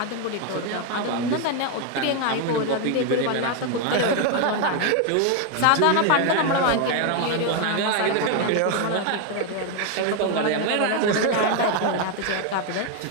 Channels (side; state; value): both; different; correlation 0.01